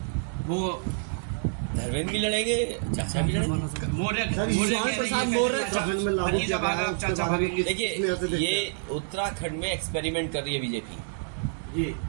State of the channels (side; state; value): left; silent; digital silence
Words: वो धर्मेंद्र भी लड़ेंगे, चाचा भी लड़ेंगे। देखिए, ये उत्तराखंड में एक्सपेरिमेंट कर रही है बीजेपी,